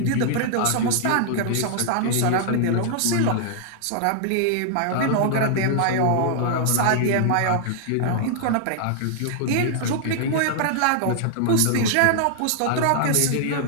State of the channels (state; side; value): different; both; correlation -0.01